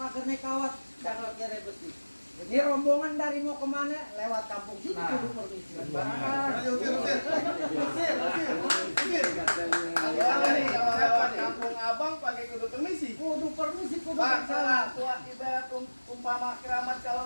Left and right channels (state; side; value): inverted; both; correlation -1.00